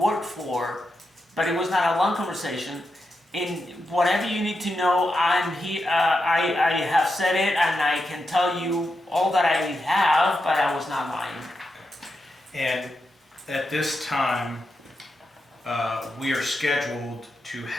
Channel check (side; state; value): both; normal; correlation 0.87